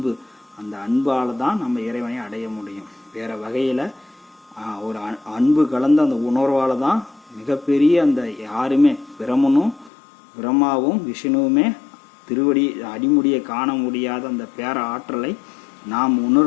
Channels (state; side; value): drops out; right; at 9.9 s